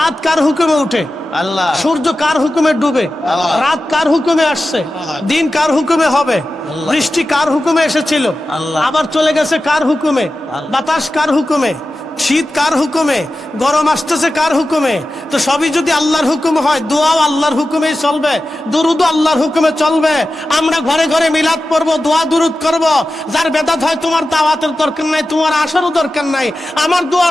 কার হুকুমে উঠে? আল্লাহ। সূর্য কার হুকুমে ডুবে? রাত কার হুকুমে আসছে? দিন কার হুকুমে হবে? বৃষ্টি কার হুকুমে এসেছিল, আবার চলে গেছে কার হুকুমে? বাতাস কার হুকুমে? শীত কার হুকুমে? গরম আসতেছে কার হুকুমে? তো সবই যদি আল্লাহর হুকুম হয়, দোয়াও আল্লাহর হুকুমেই চলবে, দুরুদও আল্লাহর হুকুমে চলবে। আমরা ঘরে ঘরে মিলাদ পড়বো, দোয়া দুরুদ করব। যার বেদাত হয়, তোমার দাওয়াতের দরকার নাই, তোমার আসারও দরকার নাই। আমার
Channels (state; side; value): normal; both; correlation 0.94